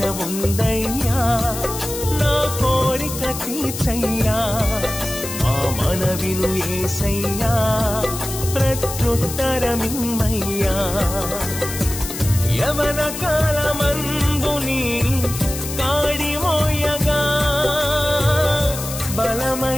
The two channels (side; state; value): left; noise; hiss, 8 dB below the sound